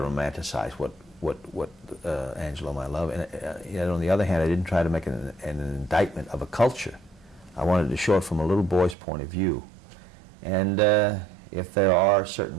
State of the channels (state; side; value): drops out; left; at 9.0 s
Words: romanticize what Angelo, my love, and yet on the other hand, I didn't try to make an indictment of a culture. I wanted to show it from a little boy's point of view. And if there are